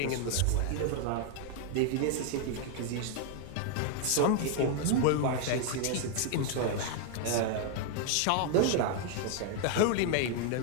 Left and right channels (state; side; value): different; both; correlation 0.00